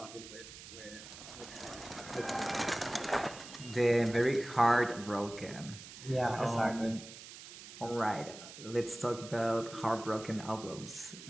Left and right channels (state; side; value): noise; right; hiss, 14 dB below the sound